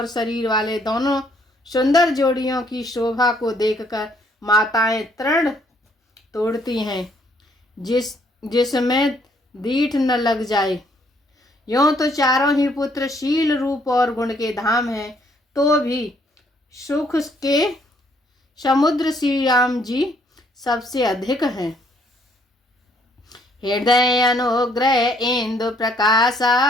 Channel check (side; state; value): both; normal; correlation 0.66